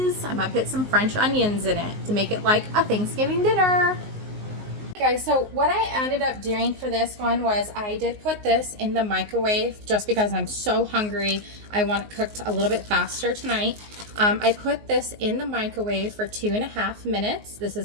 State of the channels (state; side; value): late; left; 19 ms